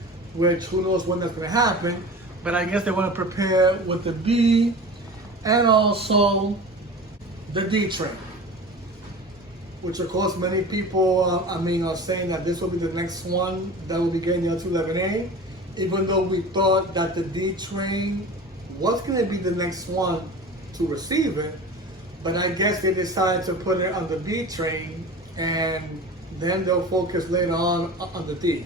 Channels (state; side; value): normal; both; correlation 0.35